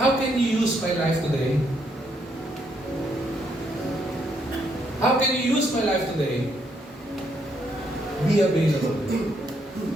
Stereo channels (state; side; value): normal; both; correlation 0.74